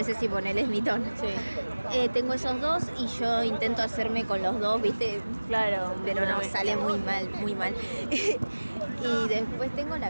sí, ponele, es mi tono. Sí. Tengo esos dos y yo intento hacerme con los dos, ¿viste? Claro. Pero no, sale muy mal, muy mal. Y después tengo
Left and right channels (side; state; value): both; inverted; correlation -1.00